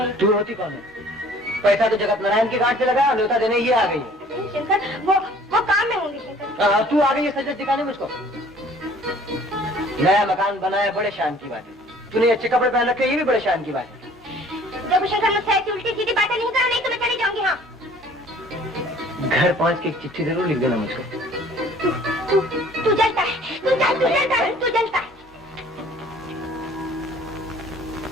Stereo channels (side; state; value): both; normal; correlation 0.53